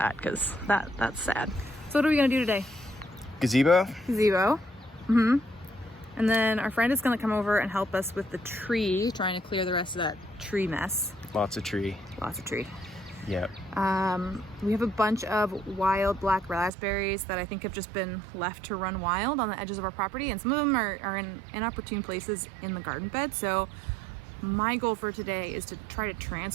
because that's sad. So what are we gonna do today? Gazebo? Gazebo. Mm-hmm. And then our friend is gonna come over and help us with the tree, trying to clear the rest of that tree mess. Lots of tree. Lots of tree. Yep. We have a bunch of wild black raspberries that I think have just been left to run wild on the edges of our property, and some of them are in inopportune places in the garden bed. So my goal for today is to try to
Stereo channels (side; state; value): left; drops out; at 16.7 s